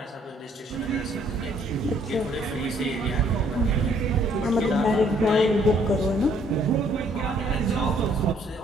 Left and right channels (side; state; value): both; normal; correlation 0.64